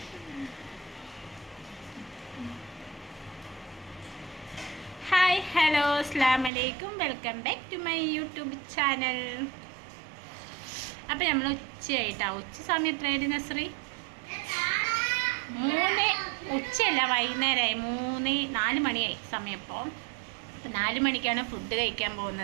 ഹായ് ഹലോ അസ്സലാമു അലൈക്കും, welcome back to my YouTube channel. അപ്പം നമ്മൾ ഉച്ചയായിട്ടാണ്. ഉച്ച സമയം എത്രയായിട്ട് നസ്രി? 3 ഉച്ചയല്ല, വൈകുന്നേരമായി. 4 മണിയായി സമയം. ഇപ്പോൾ 4 മണിക്കാണ് ഫുഡ് കഴിക്കാൻ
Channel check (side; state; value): left; drops out; at 6.5 s